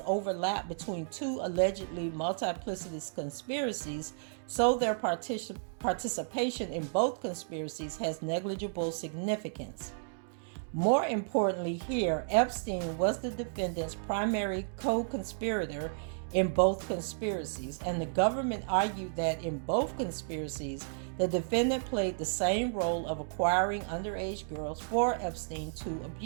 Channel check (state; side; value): silent; left; digital silence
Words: overlap between two allegedly multiplicitous conspiracies, so their participation in both conspiracies has negligible significance. More importantly here, Epstein was the defendant's primary co-conspirator in both conspiracies, and the government argued that in both conspiracies, the defendant played the same role of acquiring underage girls for Epstein to